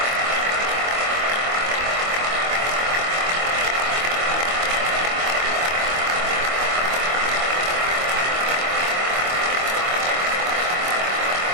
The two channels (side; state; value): left; late; 23 ms